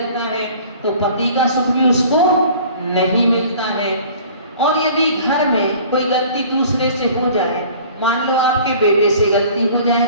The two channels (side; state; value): both; inverted; correlation -0.48